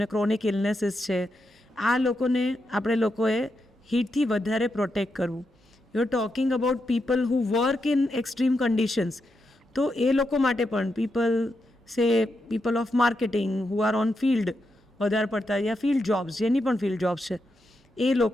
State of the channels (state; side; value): normal; both; correlation 0.84